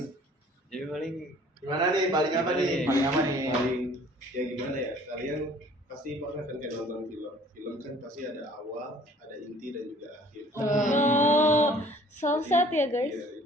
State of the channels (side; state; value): both; normal; correlation 0.53